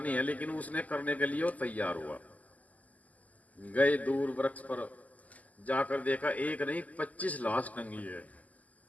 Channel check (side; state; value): right; late; 0.076 ms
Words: है। लेकिन उसने करने के लिए वो तैयार हुआ। गए दूर वृक्ष पर, जाकर देखा एक नहीं 25 लाश टंगी है।